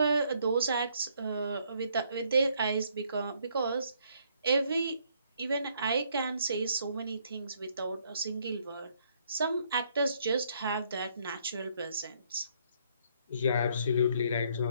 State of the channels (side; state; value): both; inverted; correlation -0.69